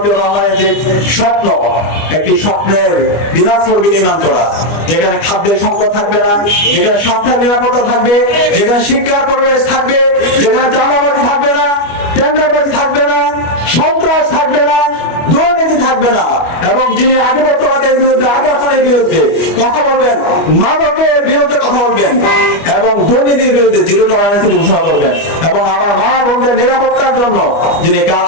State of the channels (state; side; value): late; right; 25 ms